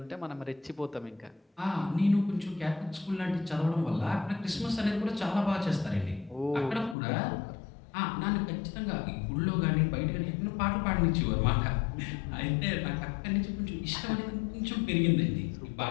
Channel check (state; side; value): drops out; right; at 7.0 s